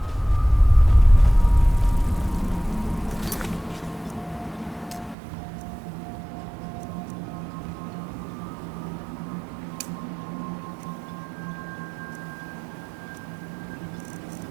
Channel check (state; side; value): drops out; left; at 5.2 s